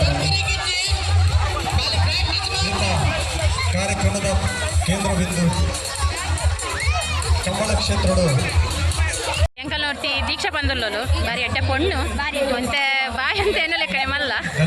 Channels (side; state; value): both; identical; correlation 1.00